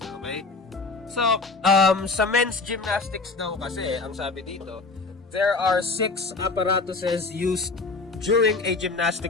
okay? So, sa men's gymnastics daw kasi, ang sabi dito, there are 6 apparatuses used during a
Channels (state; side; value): quieter; right; 3.9 dB